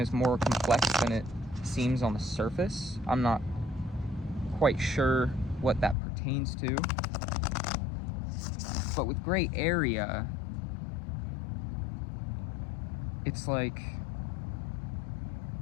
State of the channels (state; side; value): drops out; right; at 6.0 s